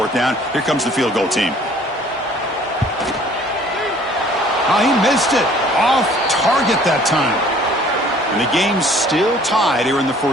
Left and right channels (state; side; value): normal; both; correlation 0.54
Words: down. Here comes the field goal team. Oh, he missed it. Off target that time. And the game's still tied here in the